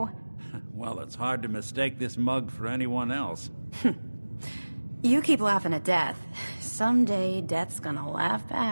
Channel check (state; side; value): inverted; both; correlation -1.00